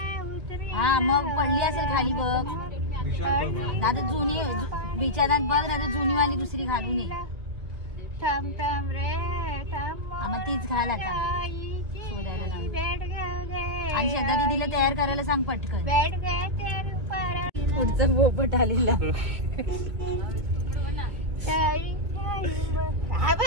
हा मग पडली असेल खाली बघ आता जुनी बिचारात बघ ना जुनी वाली दुसरी घालून ये मग तीच घाल आता आणि श्रद्धा दीदीला तयार करायला सांग पटकन पुढचा पोपट आलेला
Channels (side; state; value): left; late; 2.2 ms